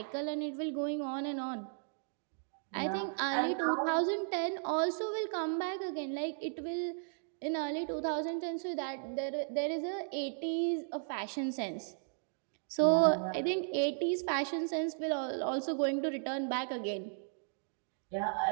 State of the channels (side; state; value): left; silent; digital silence